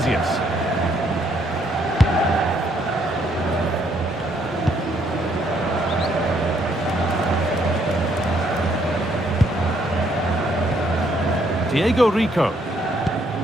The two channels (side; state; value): both; normal; correlation 0.70